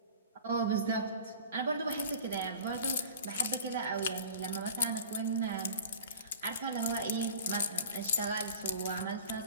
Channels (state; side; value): inverted; both; correlation -0.39